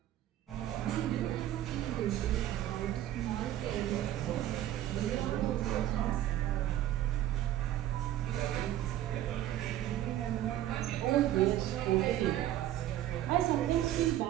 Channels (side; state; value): left; quieter; 13.0 dB